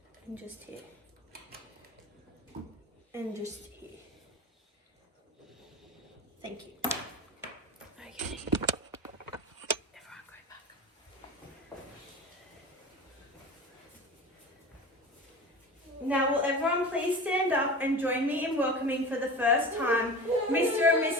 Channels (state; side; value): normal; both; correlation 0.32